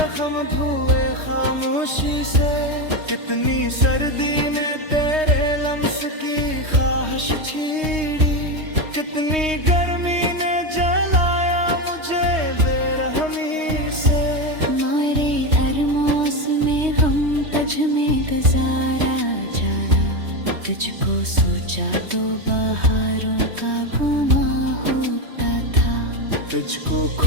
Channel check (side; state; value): left; late; 3.2 ms